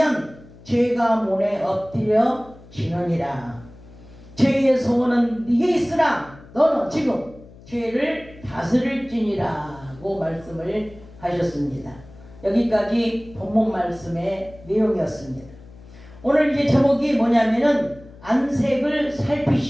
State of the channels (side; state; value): left; noise; hum, 21 dB below the sound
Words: 죄가 문에 엎드려 지느니라. 죄의 소원은 네게 있으나 너는 지금 죄를 다스릴지니라고 말씀을 하셨습니다. 여기까지 본문 말씀의 내용이었습니다. 오늘 이제 제목이 뭐냐면은 안색을